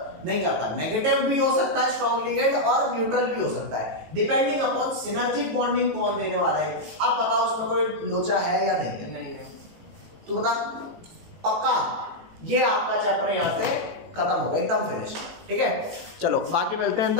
नहीं करता। नेगेटिव भी हो सकता है स्ट्रॉन्ग लिगेंड और न्यूट्रल भी हो सकता है, डिपेंडिंग अपॉन सिनर्जिक बॉन्डिंग कौन देने वाला है। अब बताओ उसमें कोई लोचा है या नहीं है? नहीं है। तू बता पक्का? ये आपका चैप्टर यहाँ पे खत्म होगा, एकदम फिनिश, ठीक है? चलो बाकी मिलते हैं इन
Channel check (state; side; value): late; left; 18 ms